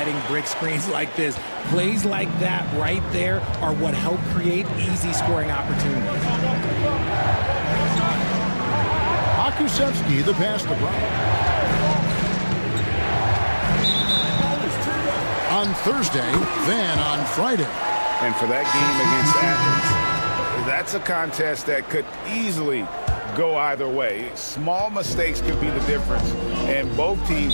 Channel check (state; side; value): inverted; both; correlation -1.00